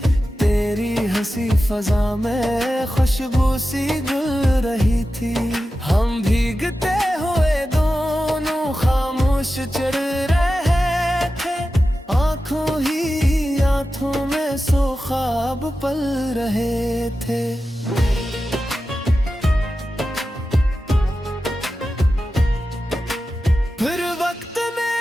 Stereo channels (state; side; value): normal; both; correlation 0.93